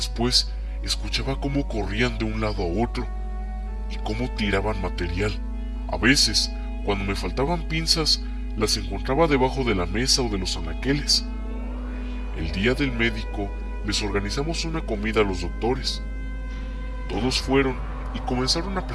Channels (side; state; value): both; identical; correlation 1.00